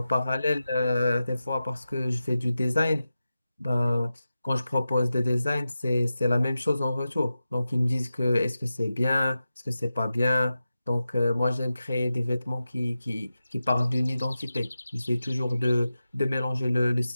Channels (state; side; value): inverted; both; correlation -0.93